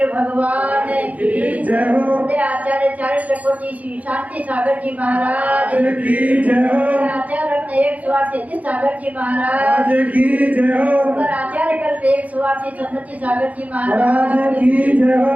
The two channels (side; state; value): left; late; 0.072 ms